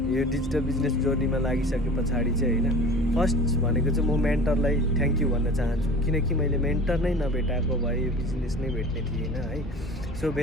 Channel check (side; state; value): both; normal; correlation 0.39